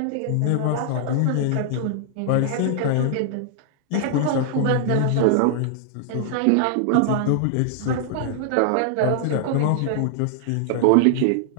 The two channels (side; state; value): both; different; correlation -0.01